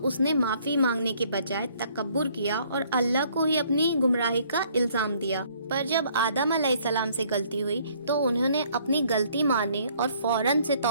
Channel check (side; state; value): both; inverted; correlation -0.62